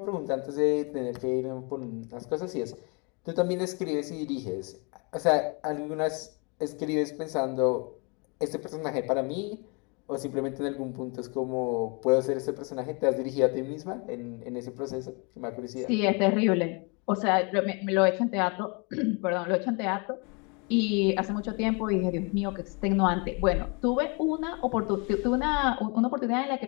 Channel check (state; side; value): quieter; right; 32.4 dB